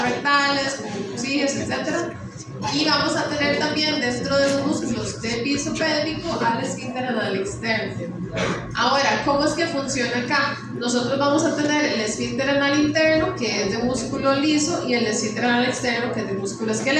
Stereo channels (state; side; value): identical; both; correlation 1.00